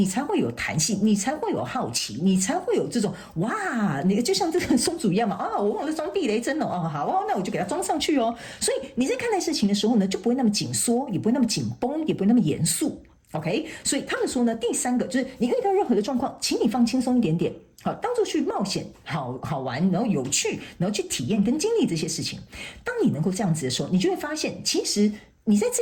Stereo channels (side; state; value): both; identical; correlation 1.00